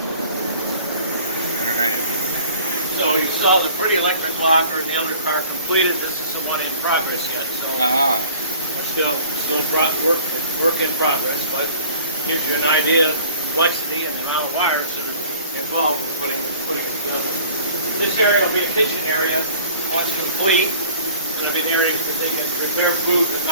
So you saw the pretty electric locker and the other car completed. This is the one in progress yet. So still work in progress, but gives you an idea of the complexity and the amount of wires that are involved in putting it together. This area will be a kitchen area once complete. It's going to be the area that they can prepare food, but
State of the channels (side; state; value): both; inverted; correlation -0.49